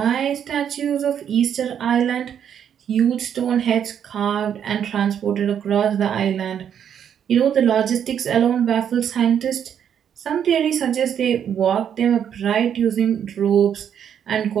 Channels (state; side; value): quieter; left; 8.8 dB